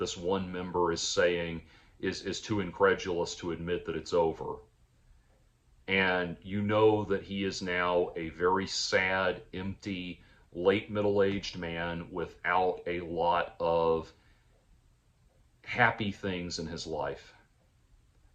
one member is saying, is too incredulous to admit that it's over. And you know that he is now a very sad, empty, late middle-aged man without a lot of happy things in his life.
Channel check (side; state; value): both; identical; correlation 1.00